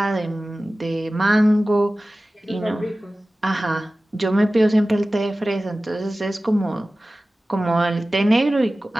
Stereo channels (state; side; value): normal; both; correlation 0.96